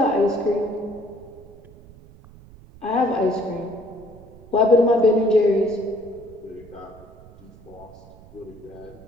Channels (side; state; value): right; noise; rumble, 22 dB below the sound